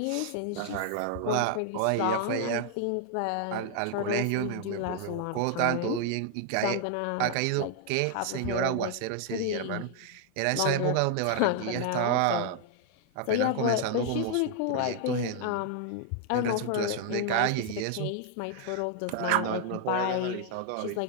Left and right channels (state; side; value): different; both; correlation 0.00